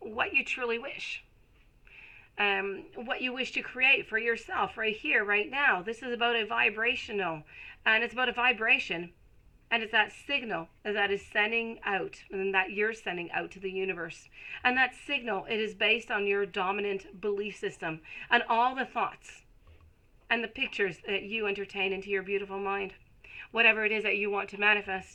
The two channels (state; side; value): identical; both; correlation 1.00